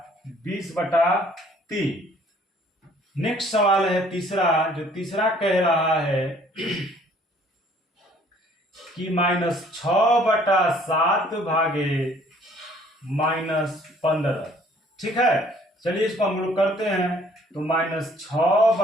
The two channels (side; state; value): both; normal; correlation 0.58